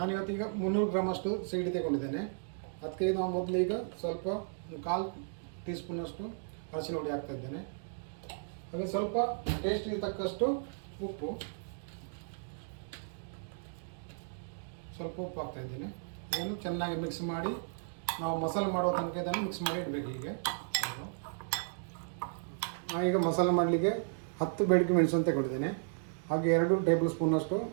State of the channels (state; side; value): silent; left; digital silence